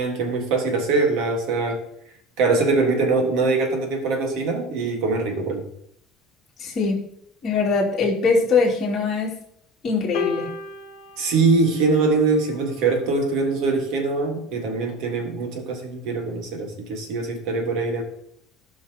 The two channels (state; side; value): normal; both; correlation 0.30